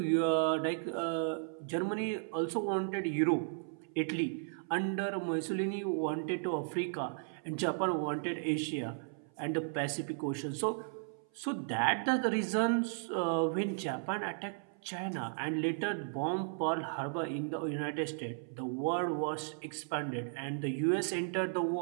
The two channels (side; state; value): left; silent; 54 dB below the other